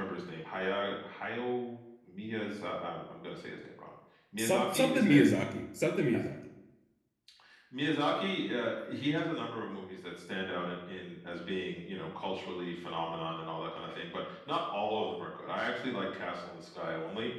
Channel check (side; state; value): both; identical; correlation 1.00